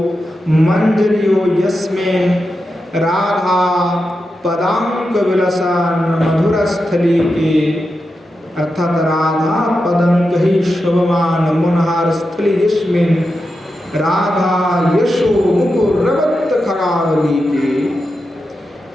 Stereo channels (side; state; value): both; normal; correlation 0.89